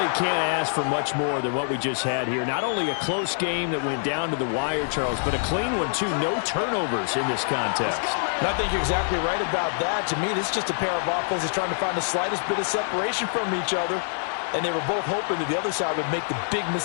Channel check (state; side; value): silent; right; digital silence